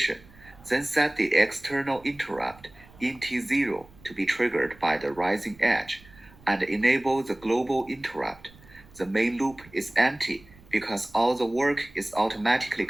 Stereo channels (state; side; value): noise; right; rumble, 24 dB below the sound